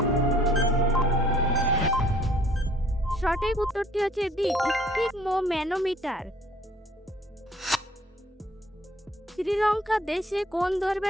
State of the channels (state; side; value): normal; both; correlation 0.59